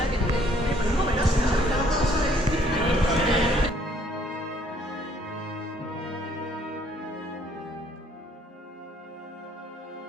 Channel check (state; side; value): normal; both; correlation 0.63